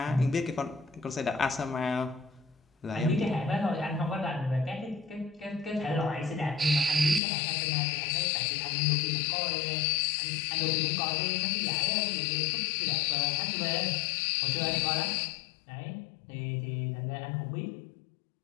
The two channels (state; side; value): drops out; right; at 7.2 s